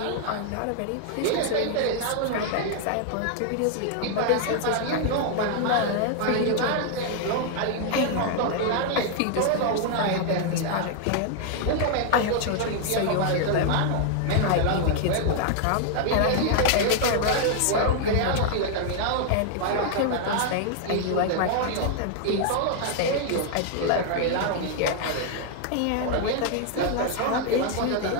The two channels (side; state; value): both; different; correlation 0.00